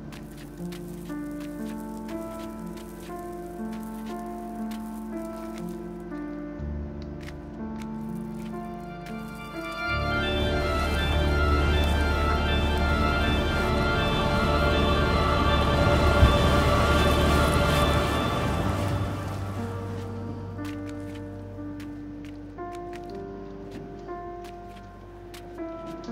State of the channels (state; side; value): identical; both; correlation 1.00